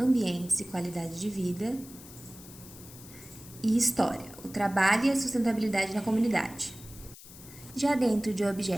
e Qualidade de Vida e História, o trabalho e a sustentabilidade na comunidade. Já dentro de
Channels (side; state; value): left; noise; hiss, 18 dB below the sound